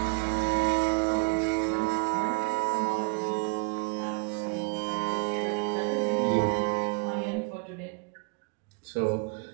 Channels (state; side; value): quieter; left; 33.5 dB